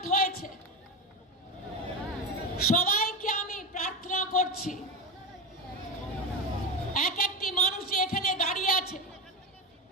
হয়েছে, সবাইকে আমি প্রার্থনা করছি, এক একটি মানুষ এখানে দাঁড়িয়ে আছে,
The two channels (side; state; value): both; normal; correlation 0.17